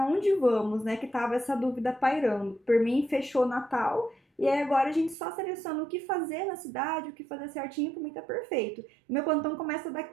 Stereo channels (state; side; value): drops out; left; at 5.2 s